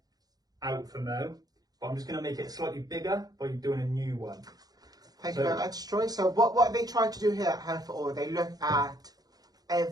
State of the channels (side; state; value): left; late; 0.19 ms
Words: out for Mo, but I'm just going to make it slightly bigger by doing a new one. Thank you very much, Troy. So what they try to do here at Hair for All, they look at